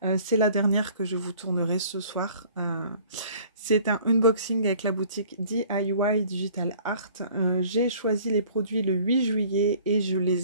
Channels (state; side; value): inverted; both; correlation -0.53